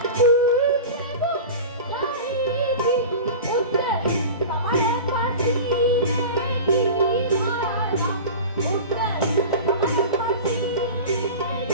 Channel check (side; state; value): both; inverted; correlation -0.32